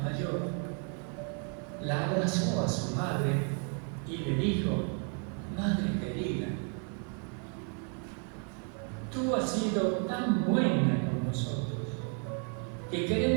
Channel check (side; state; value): left; quieter; 39.6 dB